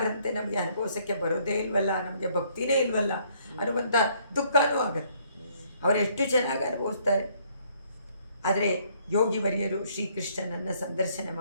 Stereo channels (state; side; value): inverted; both; correlation -0.66